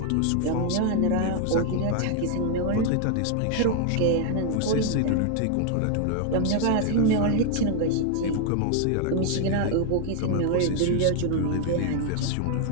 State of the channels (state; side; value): different; both; correlation 0.00